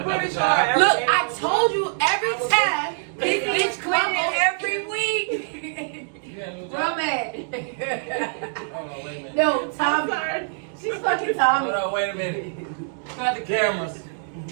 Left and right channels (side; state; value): left; silent; digital silence